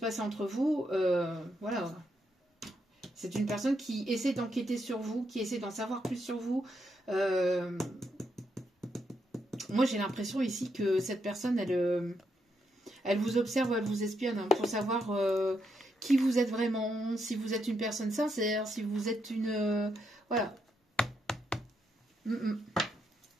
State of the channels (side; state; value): both; normal; correlation 0.79